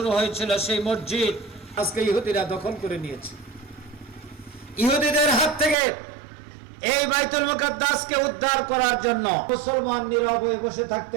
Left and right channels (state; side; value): drops out; left; at 5.8 s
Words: হয়েছিল, সেই মসজিদ আজকে ইহুদিরা দখল করে নিয়েছে। ইহুদিদের হাত থেকে এই বাইতুল মুকাদ্দাসকে উদ্ধার করার জন্য মুসলমান নীরব হয়ে বসে